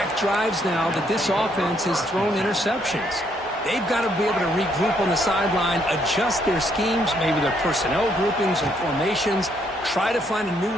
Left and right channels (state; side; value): normal; both; correlation 0.71